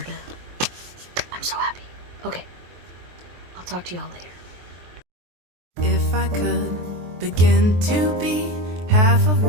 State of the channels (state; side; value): late; left; 23 ms